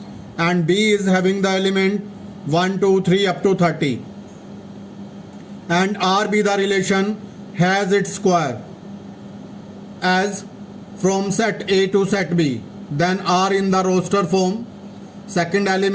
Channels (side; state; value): both; identical; correlation 1.00